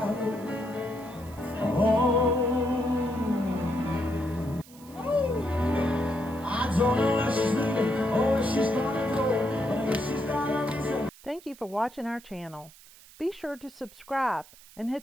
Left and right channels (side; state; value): right; noise; hiss, 22 dB below the sound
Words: I don't know where she's leaving or where she's gonna go, but I guess she's got a reason. Thank you for watching our channel. Be sure to subscribe and hit